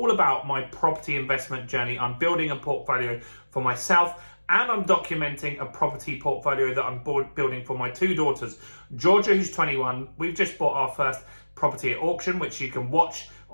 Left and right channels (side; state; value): both; inverted; correlation -1.00